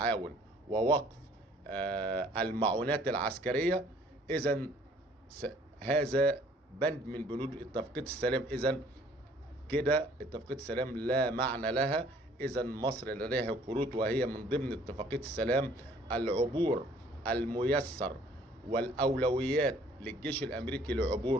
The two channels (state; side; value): normal; both; correlation 0.57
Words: ووقف المعونات العسكرية، إذن هذا بند من بنود اتفاقية السلام. إذن كده اتفاقية السلام لا معنى لها. إذن مصر لديها كروت، وهي من ضمن اتفاقية السلام العبور الميسر والأولويات للجيش الأمريكي